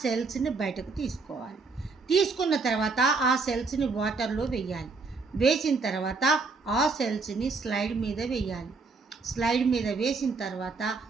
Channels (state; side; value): quieter; left; 4.2 dB